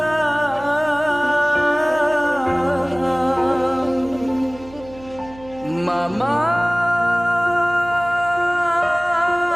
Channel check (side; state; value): right; noise; hum, 20 dB below the sound